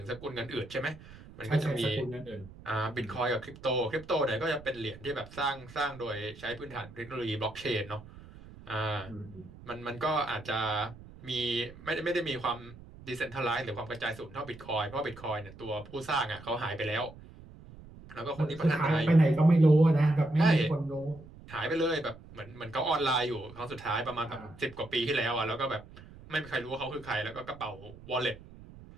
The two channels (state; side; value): noise; right; rumble, 18 dB below the sound